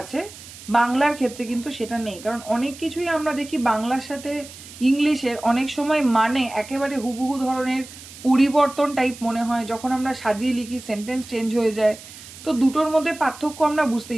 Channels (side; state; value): right; noise; hiss, 17 dB below the sound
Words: বাংলার ক্ষেত্রে কিন্তু সেটা নেই। কারণ অনেক কিছুই আমরা দেখি বাংলার সাথে ইংলিশের অনেক সময় মানে একেবারে হুবহু ধরনের পরিবর্তন টাইপ মনে হয়, যখন আমরা সাজিয়ে লিখি সেন্টেন্স চেঞ্জ হয়ে যায়। তো দুটোর মধ্যে পার্থক্য আমরা